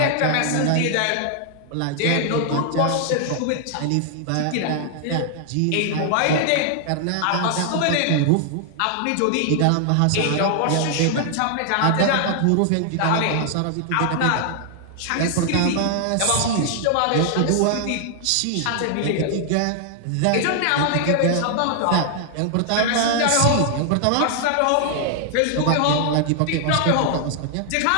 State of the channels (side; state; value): both; different; correlation 0.00